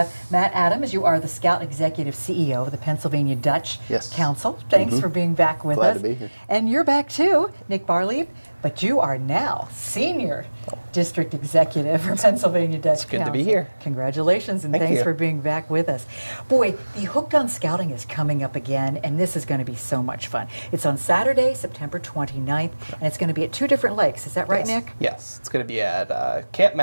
Matt Adams. You are the Scout Executive CEO of the Pennsylvania Dutch Council. Thanks for being back with us. Glad to be here. And you're back too, Nick Barlieb, but you are now Senior District Executive for Pennsylvania Dutch Council. It's good to be here. Congratulations and thanks for being back with us. Boy, the Hooked on Scouting is coming up again, and this is going to be so much fun. It's on Saturday, September 29th, and it's going to be at two different lakes. Is that right, Nick? Yes, it's going to be at Camp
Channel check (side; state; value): both; inverted; correlation -1.00